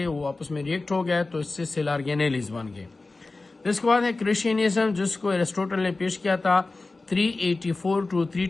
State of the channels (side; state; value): right; quieter; 3.4 dB